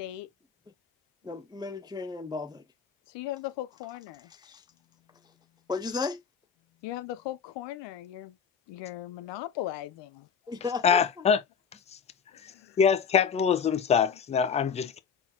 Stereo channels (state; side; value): quieter; right; 6.7 dB